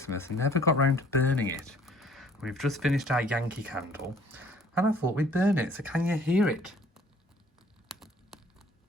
and never got round to burning it. We've just finished our Yankee candle, and I thought we'd burn it. So can you hear it?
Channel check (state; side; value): normal; both; correlation 0.57